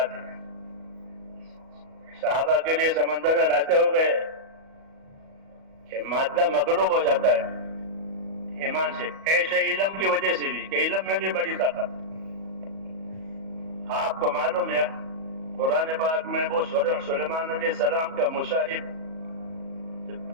ہے. صحابہ کے لیے سمندر میں راستے ہو گئے کہ مادہ مغلوب ہو جاتا ہے ایمان سے. ایسے علم کی وجہ سے بھی، کہ علم میں بھی بڑی طاقت ہے. آپ کو معلوم ہے قرآن پاک میں وہ سلیمان علیہ السلام کا مصاحب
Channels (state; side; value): late; left; 37 ms